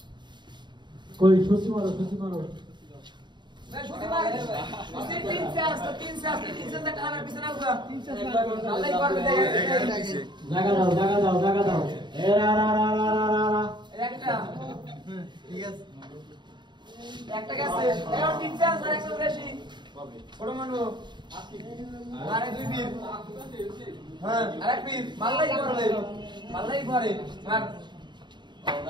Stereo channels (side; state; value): left; late; 0.22 ms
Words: কই সুসি মারো मैं छोटी मार उसे 3 से 3 से तक आना पीछे ना हुआ 3 से अल्लाह एक बार दे জায়গা দাও এ রা একটা ঠিক আছে একটা গেছে এর 3 से আর একশো বেশি বড় মানু আরে দুই পীর হ্যাঁ আরেক পীর মাল্লাই করে মার